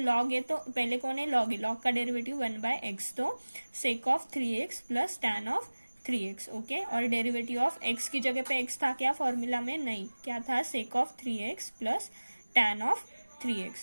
है तो पहले कौन है, लॉग है, लॉग का डेरिवेटिव 1 बाय एक्स, तो सेक of 3x plus tan of 3x। Okay, और डेरिवेटिव ऑफ x की जगह पे x था क्या फॉर्मूला में, नहीं, क्या था, sec of 3x plus tan of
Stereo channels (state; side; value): inverted; both; correlation -1.00